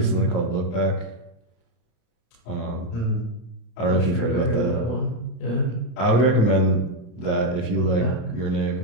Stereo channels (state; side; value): late; right; 35 ms